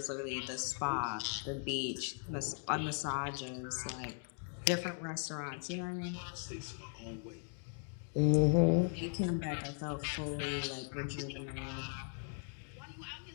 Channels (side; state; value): right; silent; 52 dB below the other